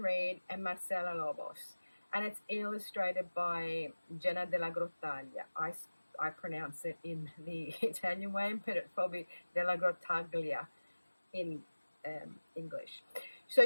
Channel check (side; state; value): both; inverted; correlation -1.00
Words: and Marcela Lobos. And it's illustrated by Jenna de la Grottaglia. I pronounce it in the Italian way, but it's probably de la Grottaglia in English. So